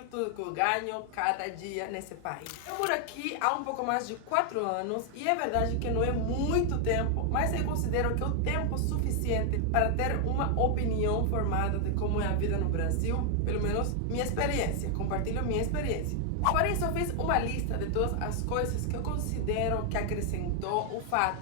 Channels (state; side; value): different; both; correlation 0.00